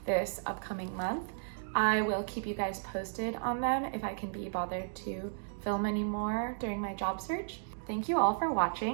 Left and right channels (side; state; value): left; silent; digital silence